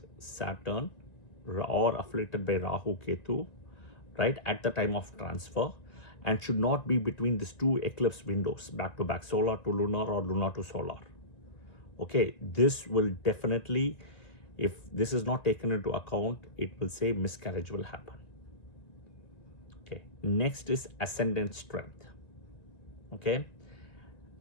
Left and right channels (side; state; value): right; late; 1.9 ms